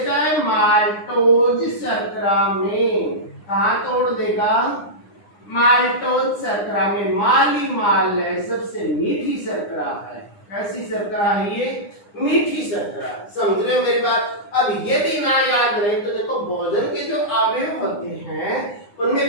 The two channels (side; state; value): right; late; 9.8 ms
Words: है माल्टोज शर्करा में। कहाँ तोड़ देगा? माल्टोज शर्करा में। माली माल है, सबसे मीठी शर्करा है। कैसी शर्करा है ये? मीठी शर्करा। समझ रहे हो मेरी बात? अब ये भी ना याद रहे तो देखो भोजन के जो अवयव होते हैं